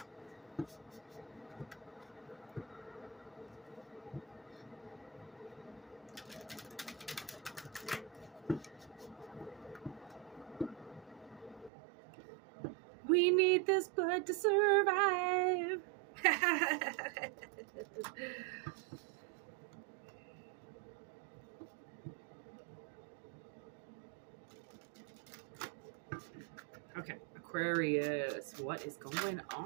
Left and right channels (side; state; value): left; drops out; at 11.7 s